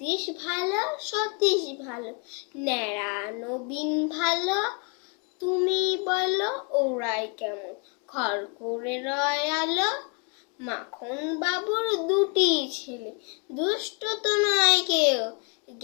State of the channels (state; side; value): quieter; right; 35.0 dB